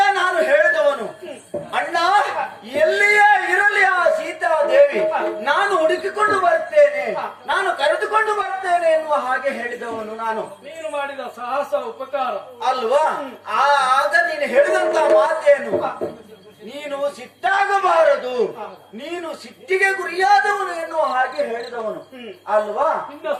ನಾನು ಹೇಳಿದವನು, ಅಣ್ಣ ಎಲ್ಲಿಯೇ ಇರಲಿ ಆ ಸೀತಾದೇವಿ ನಾನು ಹುಡುಕಿಕೊಂಡು ಬರ್ತೇನೆ, ನಾನು ಕರೆದುಕೊಂಡು ಬರ್ತೇನೆ ಎನ್ನುವ ಹಾಗೆ ಹೇಳಿದವನು ನಾನು. ನೀನು ಮಾಡಿದ ಸಾಹಸ ಉಪಕಾರ ಅಲ್ವಾ? ಆಗ ನೀನು ಹೇಳಿದಂತ ಮಾತೇನು, ನೀನು ಸಿಟ್ಟಾಗಬಾರದು, ನೀನು ಸಿಟ್ಟಿಗೆ ಗುರಿಯಾದವನು ಎನ್ನುವ ಹಾಗೆ ಹೇಳಿದವನು ಅಲ್ವಾ? ನಿನ್ನ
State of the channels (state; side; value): identical; both; correlation 1.00